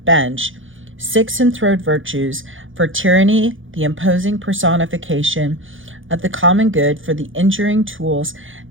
6 enthroned virtues. For tyranny, the imposing personification of the common good. For the injuring tools,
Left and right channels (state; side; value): late; left; 0.57 ms